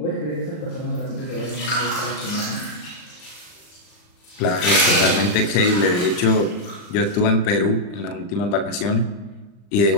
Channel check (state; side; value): late; right; 39 ms